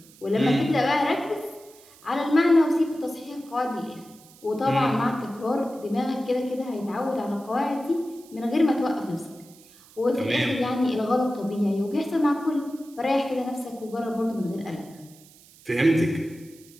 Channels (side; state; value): right; noise; hiss, 24 dB below the sound